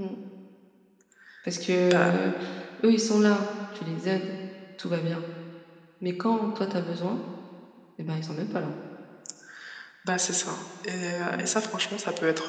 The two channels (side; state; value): both; identical; correlation 1.00